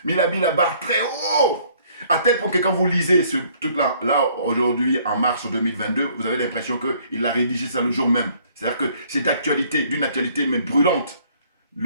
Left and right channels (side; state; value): both; inverted; correlation -0.61